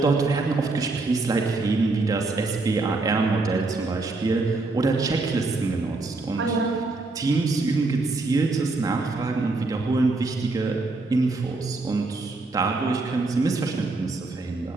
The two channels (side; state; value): left; quieter; 3.4 dB